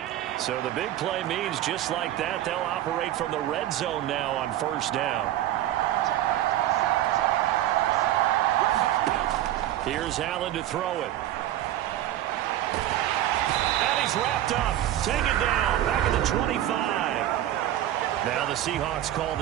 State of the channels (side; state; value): left; quieter; 13.0 dB